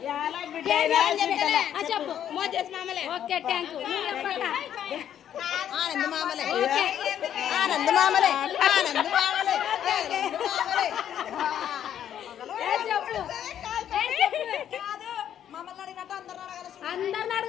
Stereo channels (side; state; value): right; quieter; 10.1 dB